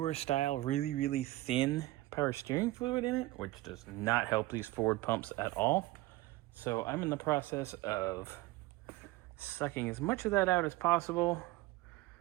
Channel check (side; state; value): left; quieter; 18.6 dB